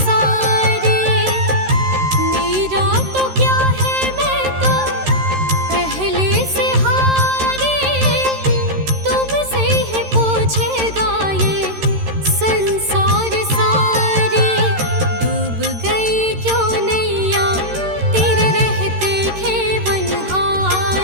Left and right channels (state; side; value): late; left; 13 ms